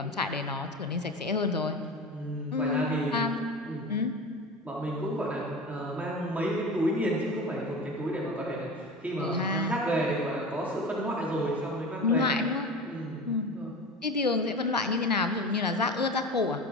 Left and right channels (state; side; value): normal; both; correlation 0.31